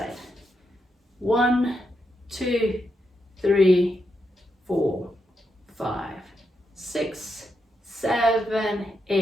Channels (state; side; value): normal; both; correlation 0.83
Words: 1, 2, 3, 4, 5, 6, 7,